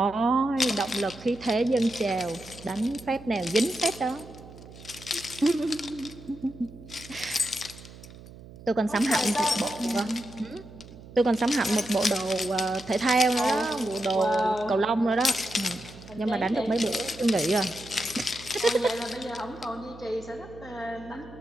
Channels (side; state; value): right; noise; hum, 18 dB below the sound